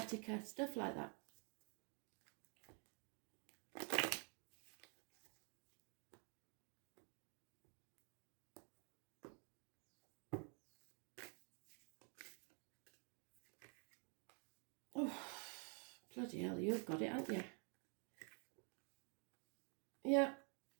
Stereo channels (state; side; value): quieter; left; 38.0 dB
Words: stuff like that. Oh, bloody hell, you've got it, haven't you? Yeah.